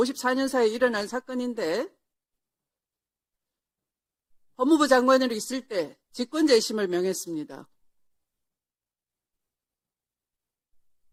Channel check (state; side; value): identical; both; correlation 1.00